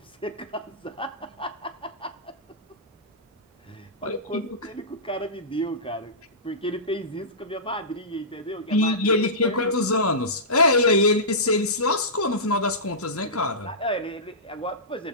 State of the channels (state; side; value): normal; both; correlation -0.18